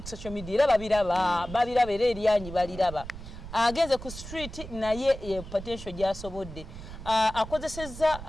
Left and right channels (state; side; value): noise; right; rumble, 12 dB below the sound